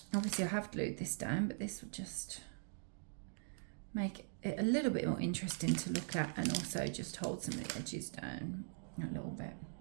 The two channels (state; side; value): silent; left; digital silence